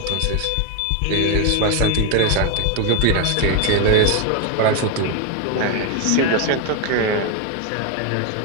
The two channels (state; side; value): different; both; correlation 0.01